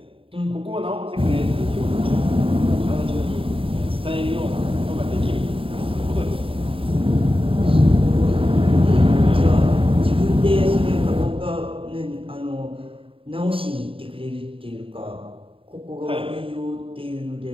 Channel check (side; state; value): left; late; 0.26 ms